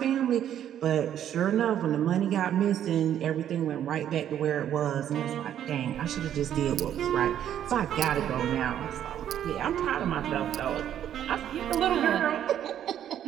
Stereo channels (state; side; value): quieter; left; 10.4 dB